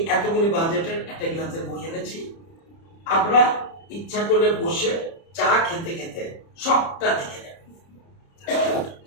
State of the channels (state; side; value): late; right; 30 ms